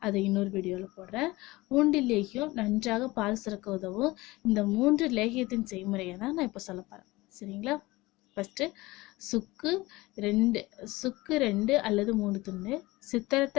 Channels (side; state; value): right; quieter; 20.6 dB